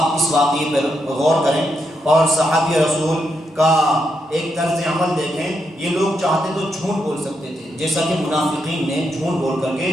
اس واقعے پر غور کریں اور صحابی رسول کا ایک طرز عمل دیکھیں۔ یہ لوگ چاہتے تو جھوٹ بول سکتے تھے، جیسا کہ منافقین نے جھوٹ بول کر کے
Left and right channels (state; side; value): normal; both; correlation 0.81